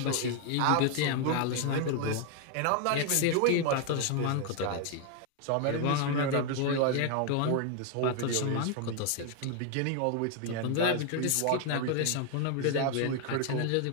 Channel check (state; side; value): different; both; correlation 0.00